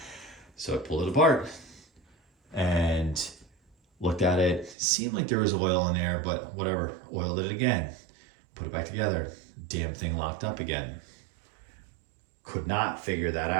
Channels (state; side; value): drops out; left; at 4.8 s